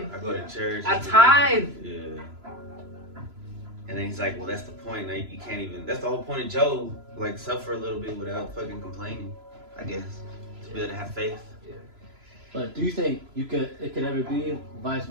I go to church. I tithe. Yeah. And then he's like, well, that's the point. Like, you can't even. That's the whole point of Job. Like, suffer a little bit without fucking complaining. I guess to be able to have faith. But do you think it could ever be vice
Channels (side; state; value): left; late; 3.0 ms